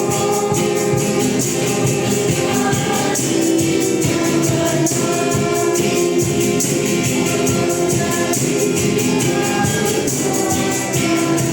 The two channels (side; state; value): both; identical; correlation 1.00